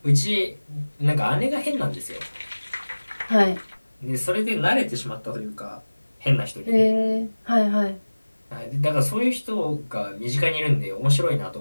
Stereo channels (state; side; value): inverted; both; correlation -1.00